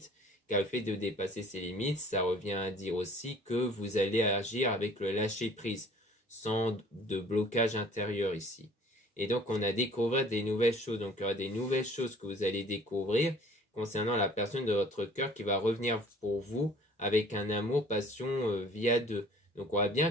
car le fait de dépasser ses limites, ça revient à dire aussi que vous allez agir avec le lâcher prise, sans de blocage intérieur ici. Et donc on a découvert des nouvelles choses, donc il y aura des nouvelles choses que vous allez découvrir concernant la personne de votre cœur qui va revenir pour vous avec un amour, passion via deux. Donc on voit bien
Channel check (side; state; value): both; normal; correlation 0.51